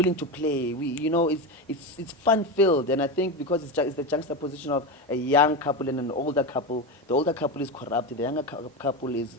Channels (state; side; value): normal; both; correlation 0.18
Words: to play. You know, it's fun filled, and I think because it's the juxtaposition of a young couple and an older couple. The older couple is corrupt. The younger couple is